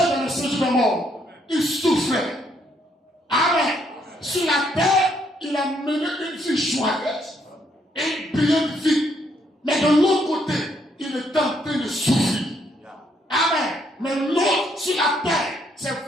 dans le séjour des morts. Il souffrait. Amen. Sur la terre, il a mené une vie joyeuse et une brillante vie. Mais de l'autre côté, il était en train de souffrir. Amen. Mais l'autre sur la terre, c'est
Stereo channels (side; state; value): both; normal; correlation 0.72